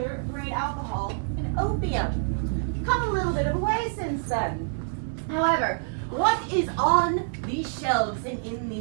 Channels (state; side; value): silent; left; digital silence